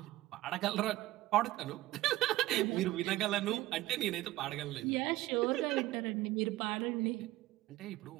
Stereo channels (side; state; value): left; quieter; 16.8 dB